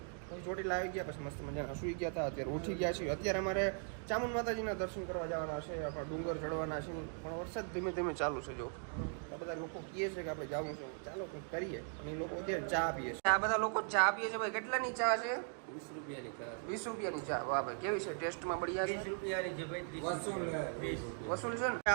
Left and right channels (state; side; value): silent; left; 52 dB below the other